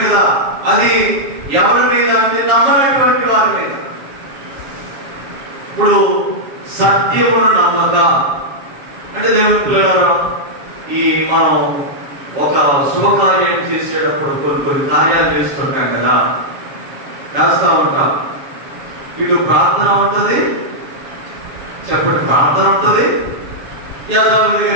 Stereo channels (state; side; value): late; left; 7.2 ms